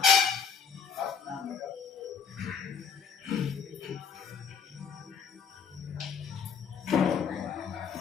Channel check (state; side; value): quieter; right; 6.7 dB